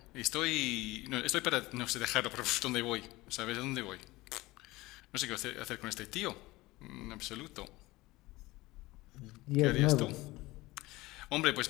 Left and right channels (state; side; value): quieter; right; 20.0 dB